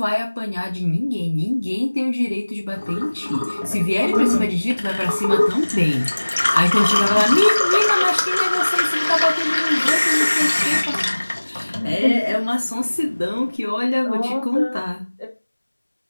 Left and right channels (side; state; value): both; inverted; correlation -1.00